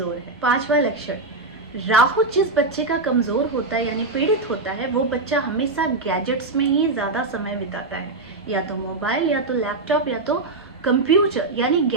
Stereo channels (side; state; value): left; quieter; 3.3 dB